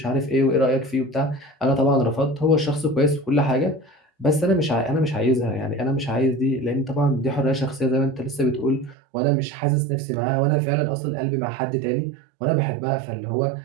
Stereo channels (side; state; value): left; drops out; at 9.0 s